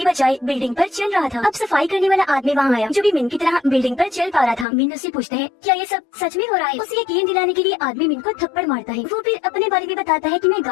बजाय बिल्डिंग पर चल रहा था। अब सफाई करने वाला आदमी वहाँ आया, जो भी मीन की तरह बिल्डिंग पर चल पा रहा था। मीन उससे पूछता है, क्या ये सब सच में हो रहा है? उसे यकीन दिलाने के लिए आदमी मीन को थप्पड़ मारता है। वो फिर अपने बारे में बताता है कि मैं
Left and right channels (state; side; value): drops out; right; at 4.7 s